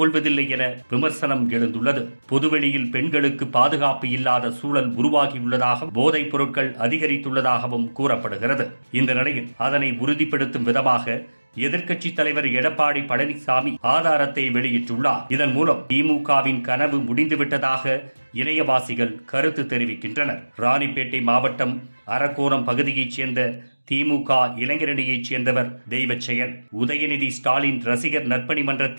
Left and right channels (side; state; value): both; inverted; correlation -1.00